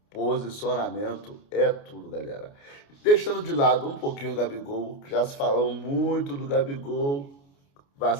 posicionamento é tudo, galera. Deixando de lado um pouquinho o Gabigol, que já se falou muito do Gabigol,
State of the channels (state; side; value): late; right; 29 ms